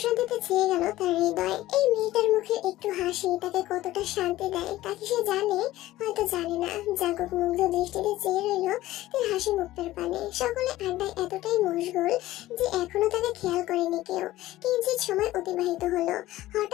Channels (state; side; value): quieter; right; 16.0 dB